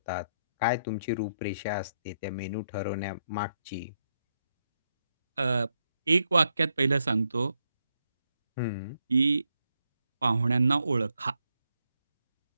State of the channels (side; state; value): both; inverted; correlation -0.79